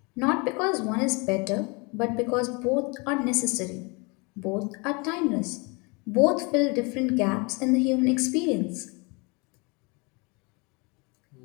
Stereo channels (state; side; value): quieter; right; 29.4 dB